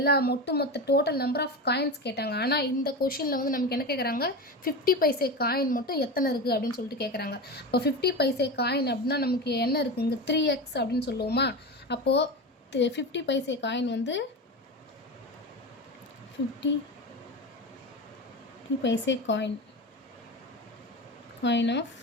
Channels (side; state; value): both; normal; correlation 0.23